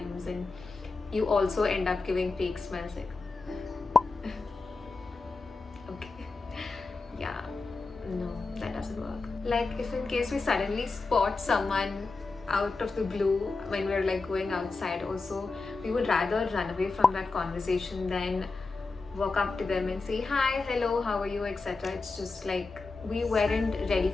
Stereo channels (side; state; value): right; quieter; 3.8 dB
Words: and you also end up giving fake smiles like yeah, no, that doesn't work. Like if in case we suddenly spot someone out of the blue when we're like going outside also, we would rather run away from that conversation than walk up to them and say hi, hello, how are you, etc. It's just like we weren't ready